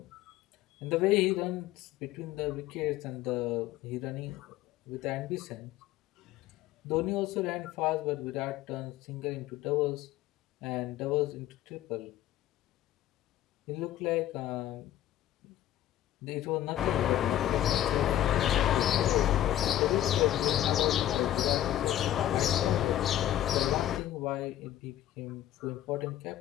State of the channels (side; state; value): right; quieter; 12.8 dB